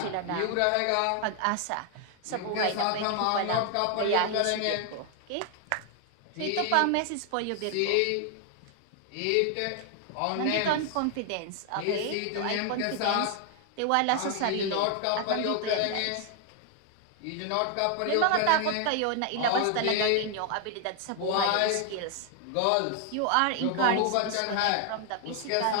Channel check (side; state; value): both; different; correlation 0.00